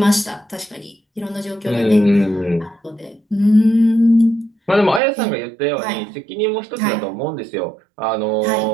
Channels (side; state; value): left; drops out; at 5.0 s